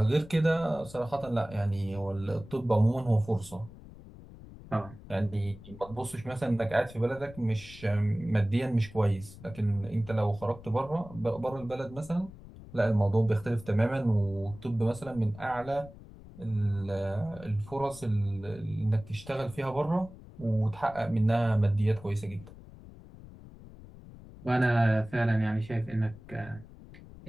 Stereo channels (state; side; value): noise; left; rumble, 18 dB below the sound